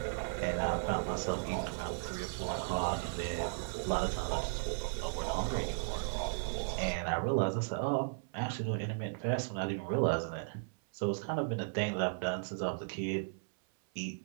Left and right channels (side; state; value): left; silent; 54 dB below the other